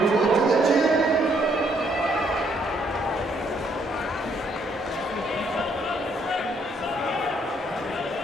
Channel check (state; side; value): normal; both; correlation 0.70